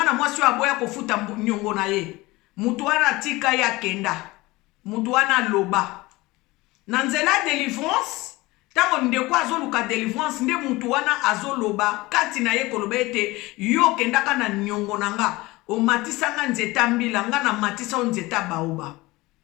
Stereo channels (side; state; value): right; quieter; 21.0 dB